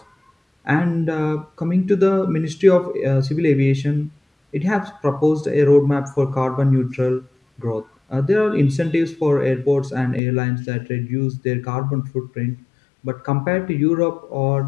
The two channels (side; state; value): right; drops out; at 10.2 s